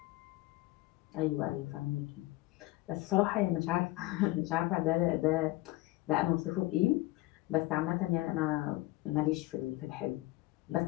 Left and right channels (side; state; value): right; quieter; 19.2 dB